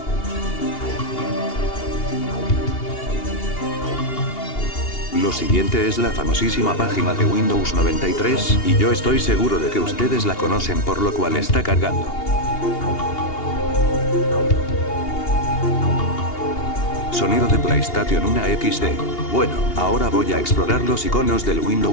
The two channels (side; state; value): right; late; 2.8 ms